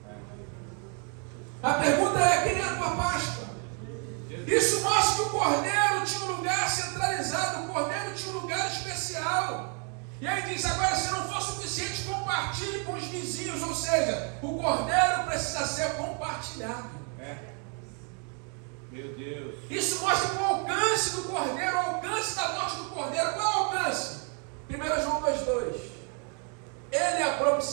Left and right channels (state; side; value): quieter; left; 39.3 dB